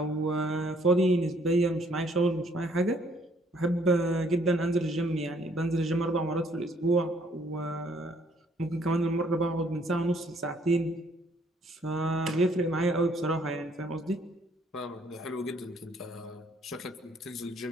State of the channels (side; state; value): both; normal; correlation 0.64